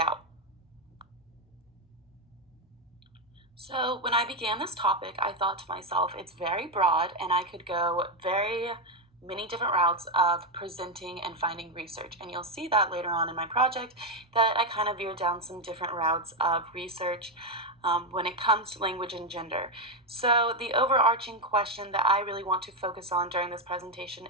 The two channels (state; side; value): normal; both; correlation 0.07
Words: So when I began this topic, I thought to myself, it's very broad, and I could go very many different routes of presenting and finding research. And you'll see that later on in my project that I kind of veered down some different routes of research when it comes to language and gender. So the overarching question that I really want to focus on during this presentation